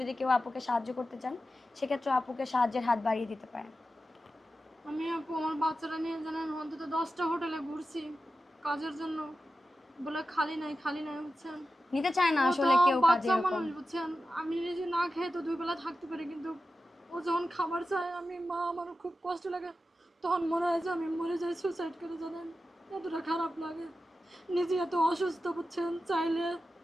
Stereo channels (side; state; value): both; normal; correlation 0.92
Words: কেউ আপুকে সাহায্য করতে চান সেক্ষেত্রে আপুকে সাহায্যের হাত বাড়িয়ে দিতে পারেন। আমি আপু আমার বাচ্চারা নিয়ে জানেন অন্তত 10টা হোটেলে ঘুরছি কাজের জন্য, বলে খালি নাই খালি নাই, বুঝছেন। নিতে চায় না ও তো আসলে কেউ কাজে বাচ্চা এরকম। মানুষ, বুঝছেন। আমি নিজে না খেয়ে তো 2 বেলা থাকতে পারি, কিন্তু ও যখন খাবার চায় আমি মা, আমার খুব কষ্ট লাগে। তখন মনে হয় যে আমি মরে যাই, সুসাইড করে, জানেন। এতটা খারাপ লাগে। নিজে এত অসুস্থ, বুঝছেন। চাইলে